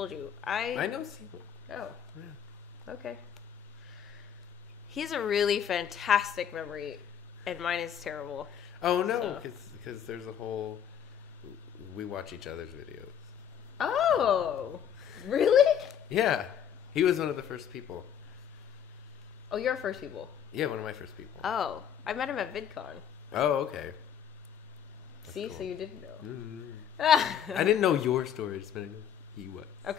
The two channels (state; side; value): quieter; right; 8.9 dB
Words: you. I know Simo. Oh. Yeah. Okay. He has a really fantastic memory, and mine is terrible. Oh, no, because there's a whole We watch each other's videos. Oh, really? Yeah. He was one of the first people. Oh, you're first people. Yeah, one of my first people. Oh, I met him at VidCon. Oh, okay. That's See, cool. so you didn't know. I didn't know your story. I just meant he was.